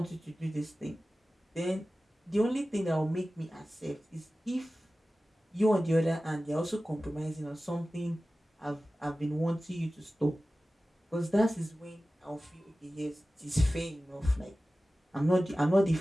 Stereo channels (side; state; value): both; normal; correlation 0.96